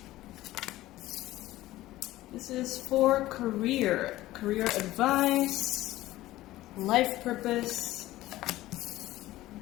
This is for career advice, life purpose.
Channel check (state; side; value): quieter; right; 16.3 dB